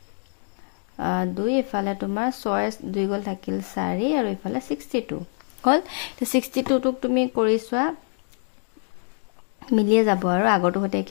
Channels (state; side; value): silent; right; 62 dB below the other